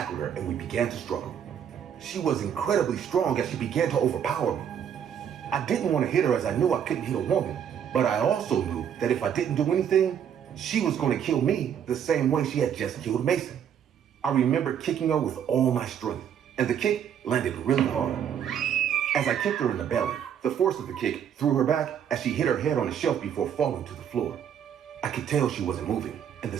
her and we began to struggle. She was incredibly strong as she began to overpower me. I didn't want to hit her as I knew I couldn't hit a woman, but I also knew that if I didn't do anything, she was going to kill me the same way she had just killed Mason. I remember kicking her with all my strength, and the kick landed really hard. As I kicked her in the belly, the force of the kick threw her back as she hit her head on a shelf before falling to the floor. I could tell she wasn't moving, and the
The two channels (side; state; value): left; quieter; 8.8 dB